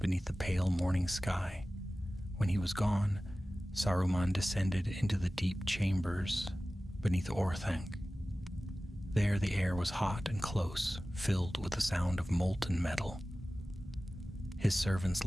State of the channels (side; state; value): both; normal; correlation 0.96